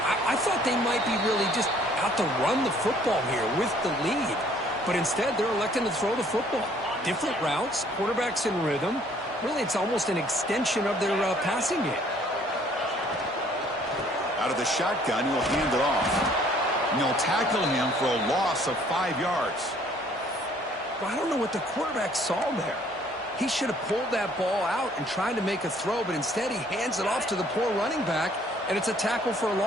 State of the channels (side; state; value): both; normal; correlation 0.60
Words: I thought they might be really just out to run the football here with the lead. But instead, they're electing to throw the football. Different routes, quarterbacks in rhythm. Really, it's almost an extension of their passing game. Out of the shotgun, he'll hand it off. And they'll tackle him for a loss of 5 yards. Well, I don't know what the quarterback saw there. He should have pulled that ball out and tried to make a throw, but instead he hands it off to the poor running back, and it's a tackle for a